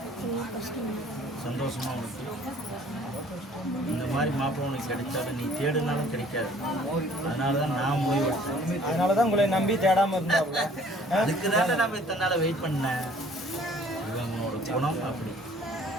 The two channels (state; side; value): normal; both; correlation 0.55